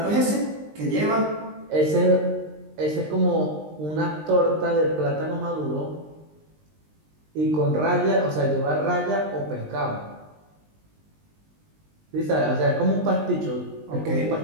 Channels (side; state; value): left; late; 20 ms